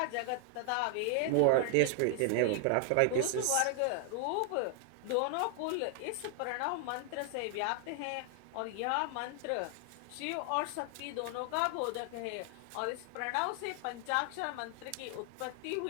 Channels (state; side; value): different; both; correlation 0.00